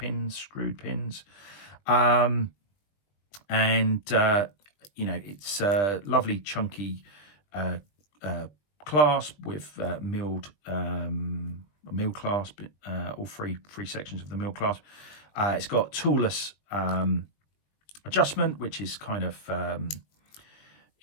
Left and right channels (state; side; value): late; right; 20 ms